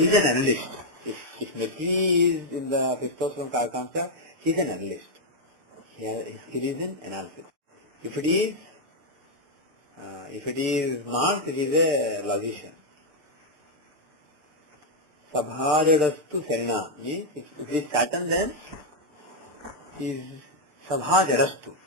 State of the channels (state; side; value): late; left; 6.7 ms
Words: an analyst. If Mercury is in the fifth house from Karkamsa, he's an analyst. His skill is in analysis. If it is Mars, it is a logician. Sabhajadastu Serena means if it is Saturn, then is Sabhajadastu.